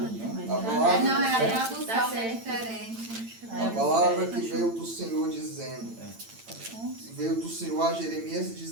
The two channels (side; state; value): left; late; 8.9 ms